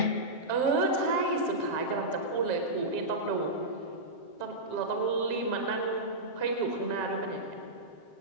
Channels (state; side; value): late; right; 7.6 ms